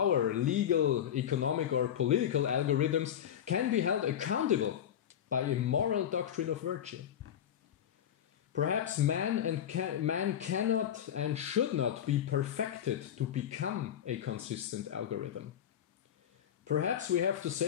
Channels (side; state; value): right; quieter; 9.7 dB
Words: legal, economic or political algorithms can be held accountable by a moral doctrine of virtue. Perhaps man cannot and should not be perfected to become a consistent algorithm. Perhaps we have to